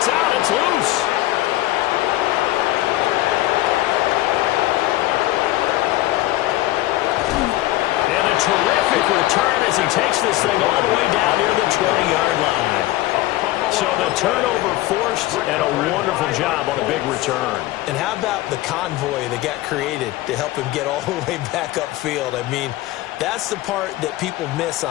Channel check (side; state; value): right; quieter; 16.8 dB